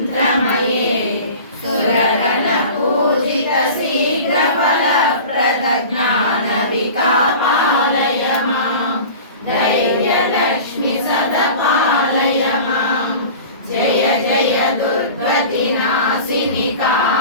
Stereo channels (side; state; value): both; inverted; correlation -0.38